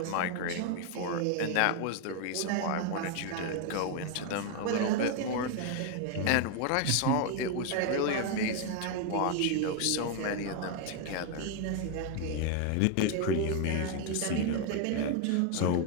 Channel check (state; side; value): different; both; correlation 0.01